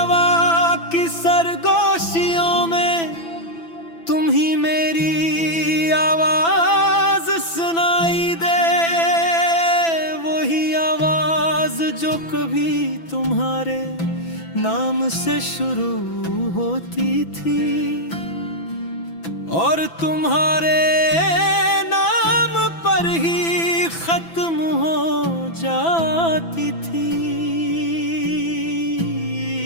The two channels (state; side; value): late; right; 6.0 ms